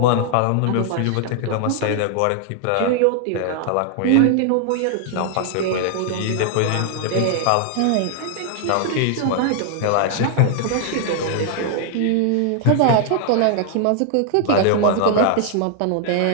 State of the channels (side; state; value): both; different; correlation 0.00